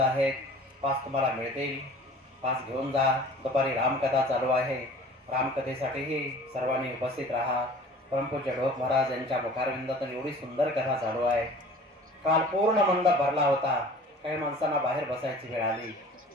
पास तुम्हाला मिळतील, पास घेऊन जा. दुपारी रामकथा चालू आहे, रामकथेसाठीही सर्वांनी उपस्थित राहा. परमपूज्य ढोक महाराज यांच्या मुखारविंदातून एवढी सुंदर कथा चालू आहे. काल पूर्ण मंडप भरला होता, काही माणसांना बाहेर बसायची वेळ आली.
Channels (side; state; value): both; normal; correlation 0.45